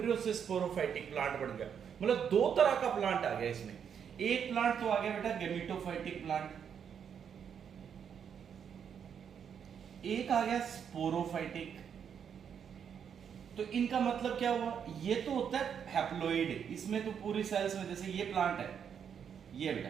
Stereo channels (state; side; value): quieter; left; 7.8 dB